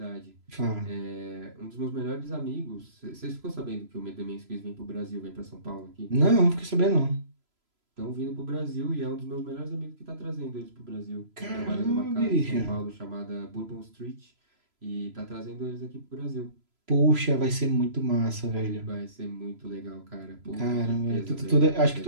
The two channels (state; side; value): late; left; 3.0 ms